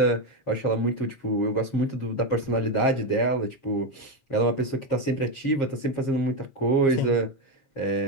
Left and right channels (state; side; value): late; right; 7.4 ms